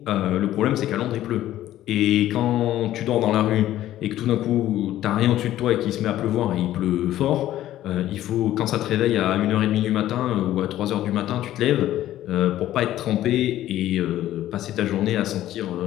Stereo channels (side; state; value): right; quieter; 13.5 dB